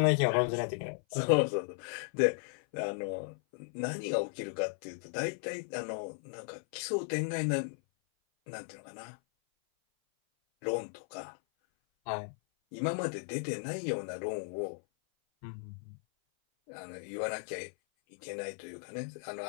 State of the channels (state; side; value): silent; right; 54 dB below the other